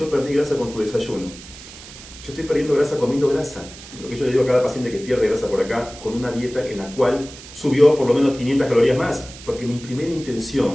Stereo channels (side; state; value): right; noise; hiss, 16 dB below the sound